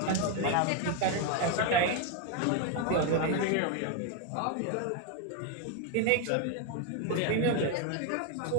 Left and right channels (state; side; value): different; both; correlation 0.01